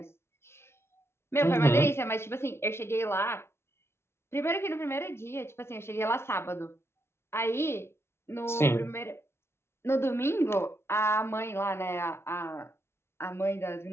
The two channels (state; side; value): late; right; 0.12 ms